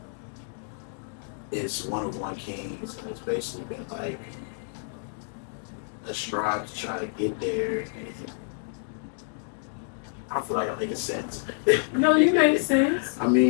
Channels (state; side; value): silent; right; digital silence